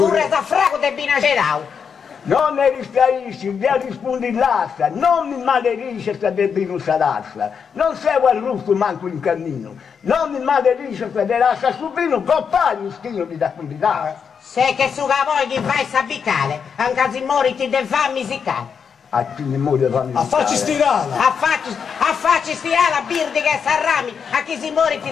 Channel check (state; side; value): quieter; right; 6.6 dB